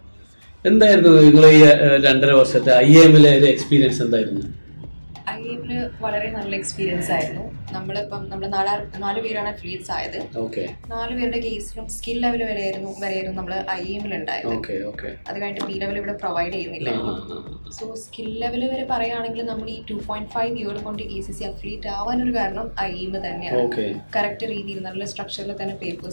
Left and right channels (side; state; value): both; inverted; correlation -1.00